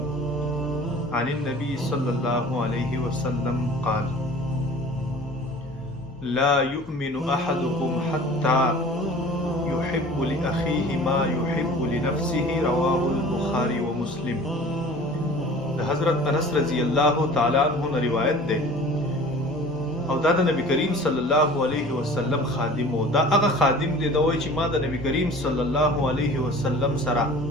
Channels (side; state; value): left; noise; hum, 23 dB below the sound